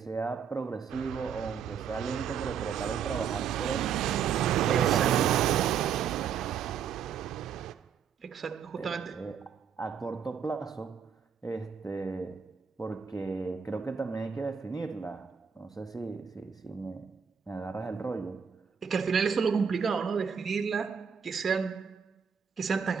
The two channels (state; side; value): quieter; left; 7.2 dB